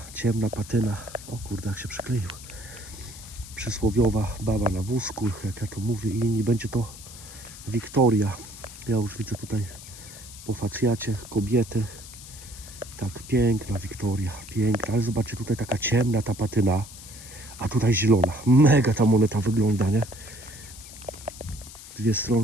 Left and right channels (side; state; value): left; noise; hiss, 16 dB below the sound